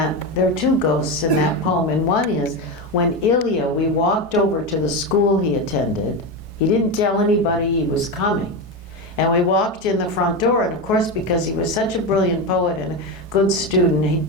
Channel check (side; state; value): both; normal; correlation 0.16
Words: poem, and one is when Ilya, we walked over to the school he attended. He didn't tell anybody he was coming. And we walked in the front door, and of course, because he was such a brilliant poet and a good student, he'd